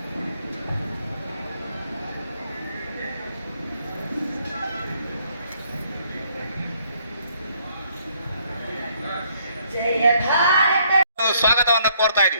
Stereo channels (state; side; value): inverted; both; correlation -0.67